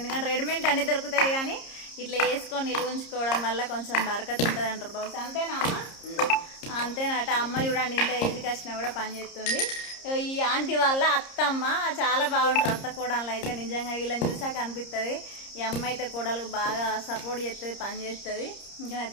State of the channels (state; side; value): late; right; 30 ms